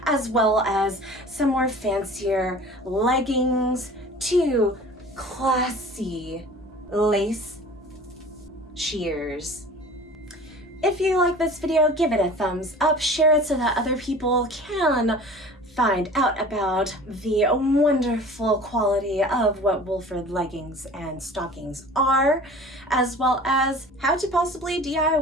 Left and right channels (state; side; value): normal; both; correlation 0.42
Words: as well as some more fancier leggings to classy lace sheers. If you like this video, give it a thumbs up, share it so that other people can find out about the wonderful quality of what Wolford leggings and stockings are, as well as how to possibly